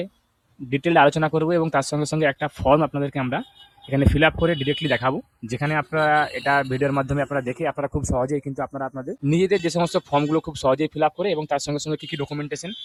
ডিটেইলড আলোচনা করব এবং তার সঙ্গে সঙ্গে একটা ফর্ম আপনাদেরকে আমরা এখানে ফিল আপ করে ডিরেক্টলি দেখাবো, যেখানে আপনারা এটা ভিডিওর মাধ্যমে আপনারা দেখে আপনারা খুব সহজেই কিন্তু আপনারা আপনাদের নিজেদের যে সমস্ত ফর্মগুলো খুব সহজেই ফিল আপ করে এবং তার সঙ্গে সঙ্গে কী কী ডকুমেন্টেশন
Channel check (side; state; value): both; identical; correlation 1.00